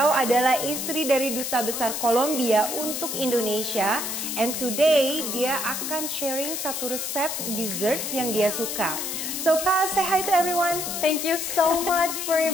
adalah istri dari Duta Besar Kolombia untuk Indonesia. And today dia akan sharing satu resep desserts yang dia suka. So Paz, say hi to everyone. Thank you so much for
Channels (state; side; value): noise; left; hiss, 3 dB below the sound